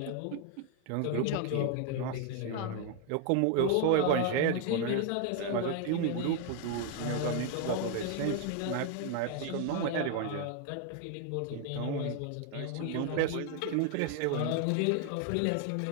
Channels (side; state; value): both; different; correlation 0.01